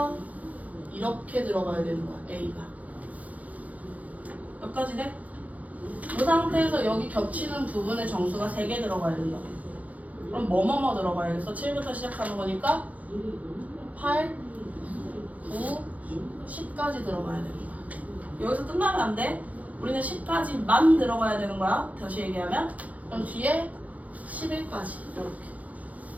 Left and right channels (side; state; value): left; late; 0.073 ms